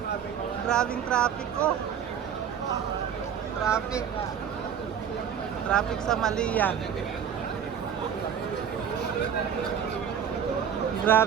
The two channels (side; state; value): left; quieter; 8.3 dB